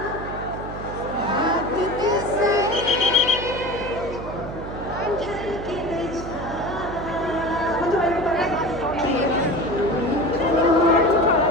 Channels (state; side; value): noise; right; hum, 10 dB below the sound